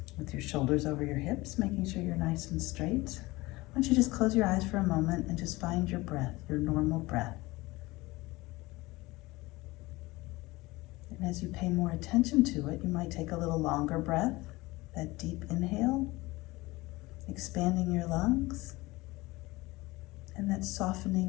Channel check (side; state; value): right; quieter; 20.9 dB